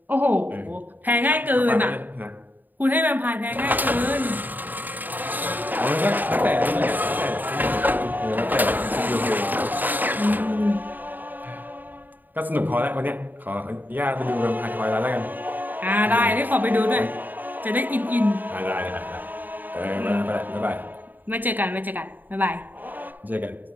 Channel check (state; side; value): late; left; 0.088 ms